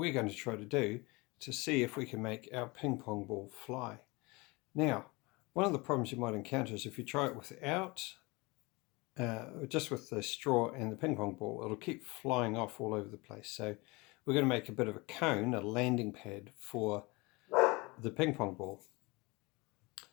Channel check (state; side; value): quieter; right; 25.0 dB